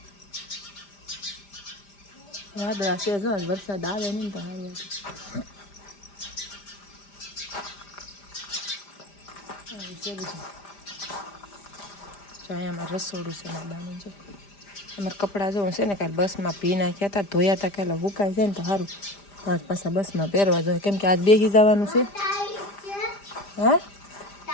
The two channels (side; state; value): right; late; 5.0 ms